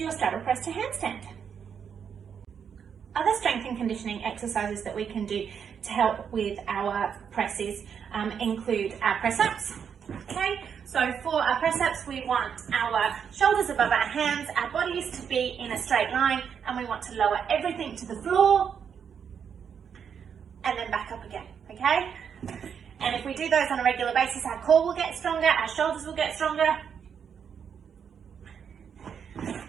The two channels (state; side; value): quieter; left; 7.4 dB